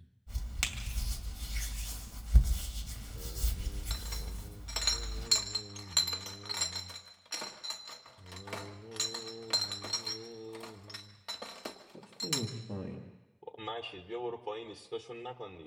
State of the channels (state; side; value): identical; both; correlation 1.00